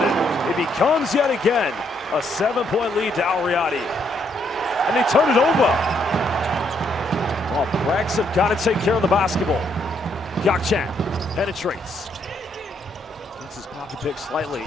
it becomes yet again a 7-point lead to Riyadi. And they turn it over. Well, Brex have got to take care of the basketball. Gakchan penetrates. Gets his pocket pick slightly.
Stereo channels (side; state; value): both; normal; correlation 0.73